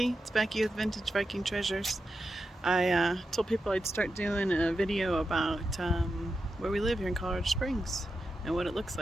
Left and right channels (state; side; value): normal; both; correlation 0.89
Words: It's Becky with Vintage Viking Treasures. I told people I'd start doing a video about where we live here in Colorado Springs and what it looks